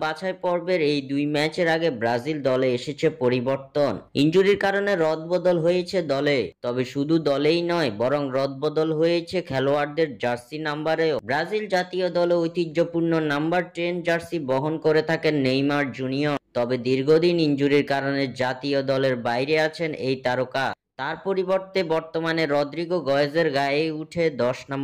বাছাই পর্বের এই দুই ম্যাচের আগে ব্রাজিল দলে এসেছে পরিবর্তন। ইনজুরির কারণে রদবদল হয়েছে দলে। তবে শুধু দলেই নয়, বরং রদবদল হয়েছে খেলোয়াড়দের জার্সি নাম্বারেও। ব্রাজিল জাতীয় দলে ঐতিহ্যপূর্ণ নাম্বার 10 জার্সি বহন করে থাকেন নেইমার জুনিয়র। তবে দীর্ঘদিন ইনজুরির কারণে জাতীয় দলের বাইরে আছেন এই তারকা। তার পরিবর্তে বর্তমানে রদ্রিগো গয়েজের গায়েই উঠে 10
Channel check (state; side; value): identical; both; correlation 1.00